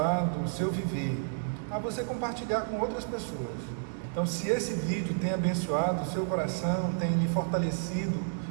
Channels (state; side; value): silent; left; digital silence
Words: o seu viver, a você compartilhar com outras pessoas. Então, se esse vídeo tem abençoado o seu coração, tem lhe fortalecido,